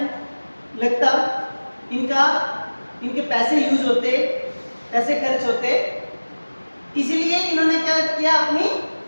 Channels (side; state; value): both; inverted; correlation -1.00